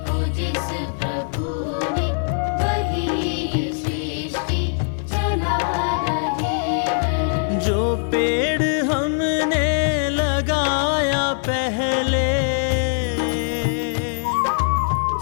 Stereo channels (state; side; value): silent; right; 64 dB below the other